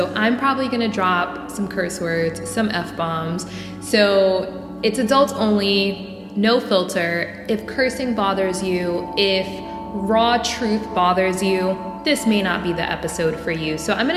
I'm probably gonna drop some curse words, some F-bombs. So, it's adults only, no filter. If cursing bothers you, if raw truth bothers you, this may not be the episode for you. So I'm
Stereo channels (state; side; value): identical; both; correlation 1.00